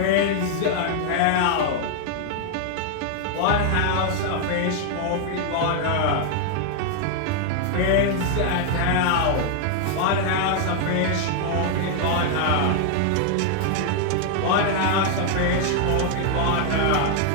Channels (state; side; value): different; both; correlation 0.00